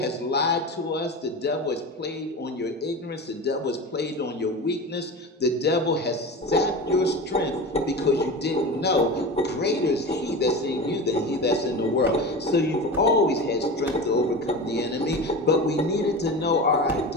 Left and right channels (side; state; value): both; normal; correlation 0.28